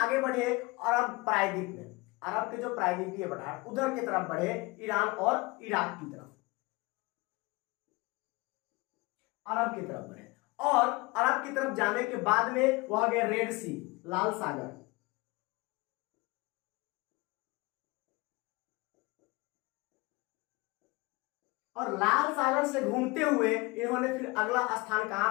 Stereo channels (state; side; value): quieter; right; 24.2 dB